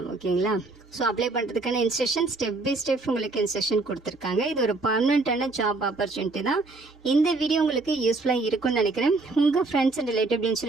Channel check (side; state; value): left; quieter; 3.4 dB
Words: ஓகேங்களா? ஸோ அப்ளை பண்ணுறதுக்கான இன்ஸ்ட்ரக்ஷன் ஸ்டெப் பை ஸ்டெப் உங்களுக்கு இன்ஸ்ட்ரக்ஷன் கொடுத்துருக்காங்க. இது ஒரு பர்மனெண்ட்டான ஜாப் ஆப்பர்ச்சுனிட்டி தான். இந்த வீடியோ உங்களுக்கு யூஸ்ஃபுல்லாக இருக்கும்னு நினைக்கிறேன். உங்கள் ஃப்ரெண்ட்ஸ் அண்ட் ரிலேட்டிவ்னு